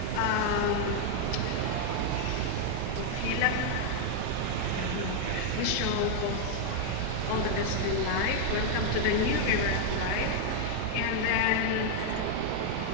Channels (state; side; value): different; both; correlation 0.00